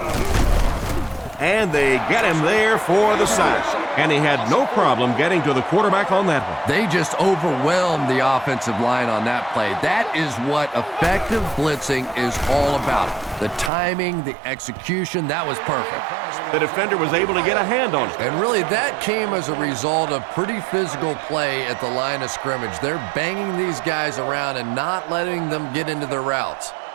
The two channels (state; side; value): drops out; left; at 13.7 s